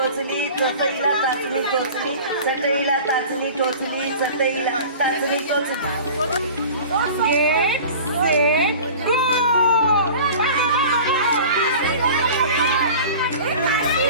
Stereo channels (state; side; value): inverted; both; correlation -0.40